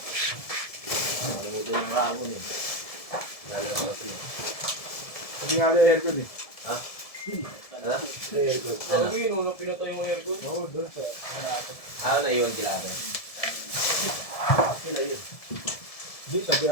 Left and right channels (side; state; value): right; late; 1.7 ms